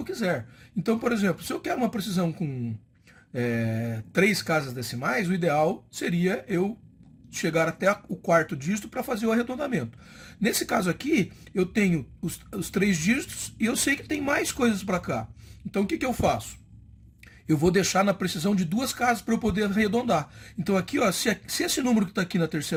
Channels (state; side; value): identical; both; correlation 1.00